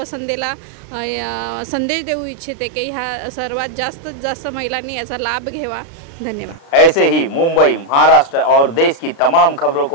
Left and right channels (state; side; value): late; right; 36 ms